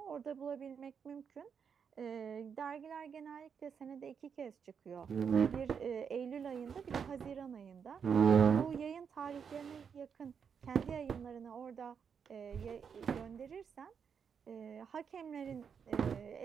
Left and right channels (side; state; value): left; quieter; 6.8 dB